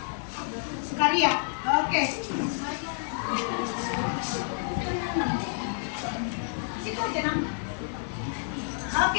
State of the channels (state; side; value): silent; right; digital silence